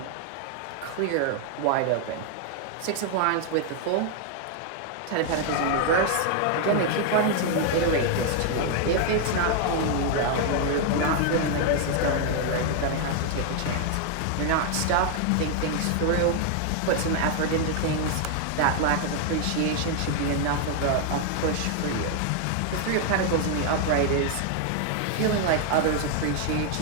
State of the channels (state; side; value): different; both; correlation 0.00